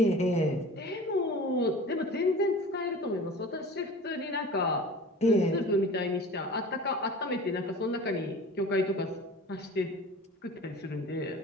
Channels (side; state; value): both; normal; correlation 0.39